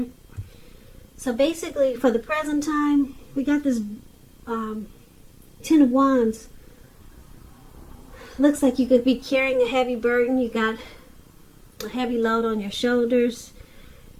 So basically, for the present time, we got this Ten of Wands. Looks like you could be carrying a heavy burden. You got a heavy load on your shoulders.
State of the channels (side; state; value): both; identical; correlation 1.00